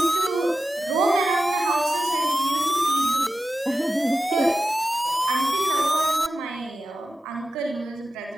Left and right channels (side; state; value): both; normal; correlation 0.93